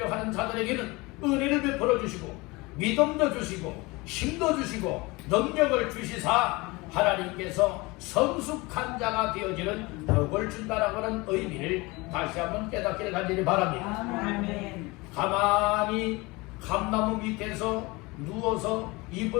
자들에게는 은혜를 베풀어 주시고 믿음도 주시고 힘도 주시고 능력을 주시사 하나님께서 성숙한 자가 되어지는 복을 준다라고 하는 의미를 다시 한번 깨닫기를 간절히 바랍니다. 아멘. 가만히 감나무 밑에서 누워서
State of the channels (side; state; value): right; quieter; 23.9 dB